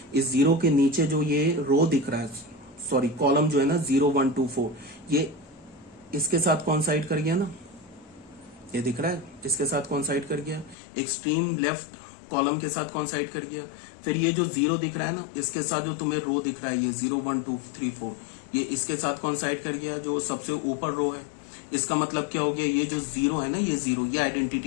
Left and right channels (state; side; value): drops out; right; at 10.8 s